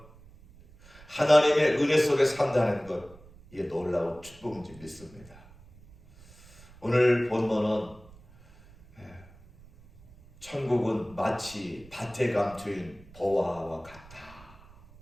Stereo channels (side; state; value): right; noise; rumble, 23 dB below the sound